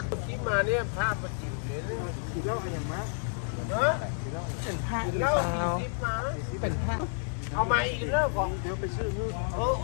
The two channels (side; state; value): right; silent; 58 dB below the other